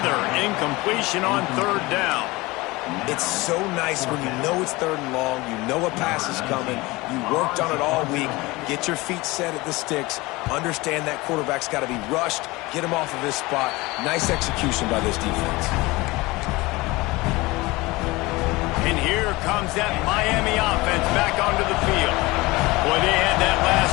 incompletion on 3rd down. It's so nice when you know it's 3rd and long, you know a pass is coming, you worked on it all week, get your feet set at the sticks, understand that quarterback's got to be rushed, get him off of his spot. Nice execution by this defense. And here comes that Miami offense back onto the field. Boy, they had that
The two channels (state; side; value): quieter; right; 21.9 dB